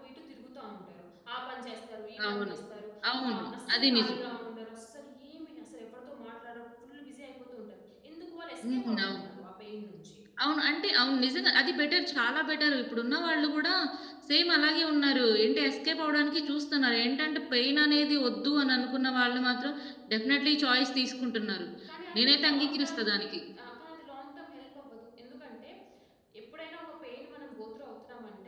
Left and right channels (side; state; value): both; identical; correlation 1.00